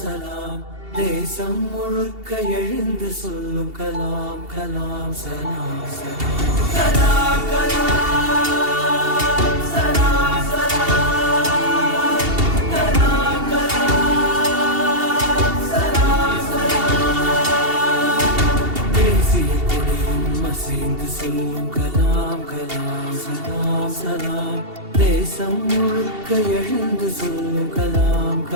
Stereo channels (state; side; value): late; left; 2.7 ms